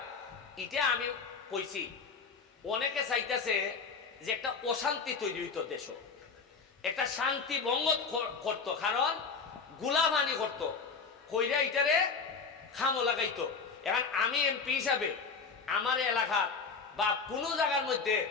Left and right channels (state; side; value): quieter; right; 5.1 dB